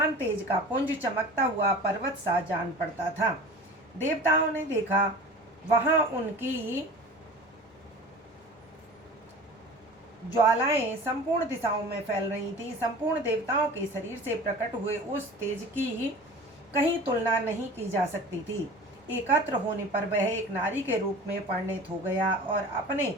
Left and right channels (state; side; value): normal; both; correlation 0.39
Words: तेज का पुंज चमकता हुआ पर्वत सा जान पड़ता था। देवताओं ने देखा, वहां उनकी ज्वालाएं संपूर्ण दिशाओं में फैल रही थी। संपूर्ण देवताओं के शरीर से प्रकट हुए उस तेज की कहीं तुलना नहीं की जा सकती थी। एकत्र होने पर वह एक नारी के रूप में परिणत हो गया और अपने